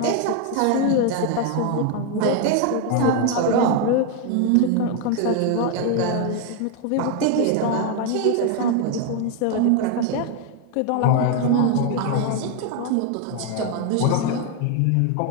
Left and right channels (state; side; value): different; both; correlation 0.01